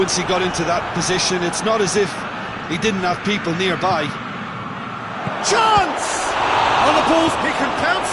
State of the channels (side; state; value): both; identical; correlation 1.00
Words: he got into that position. It's not as if he didn't have people nearby. Chance! On the balls, he can